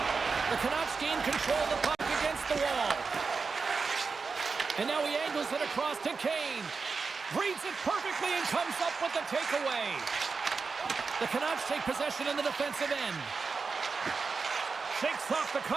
The Canucks gain control of the puck against the wall. And now he angles it across to Kane. Reads it perfectly and comes up with the takeaway. The Canucks take possession in the defensive end. Shakes off the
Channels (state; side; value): quieter; left; 4.7 dB